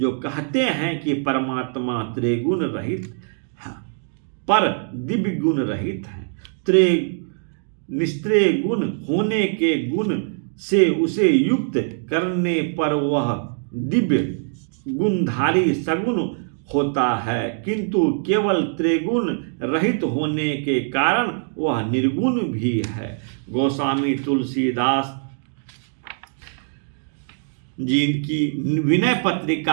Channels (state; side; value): silent; left; digital silence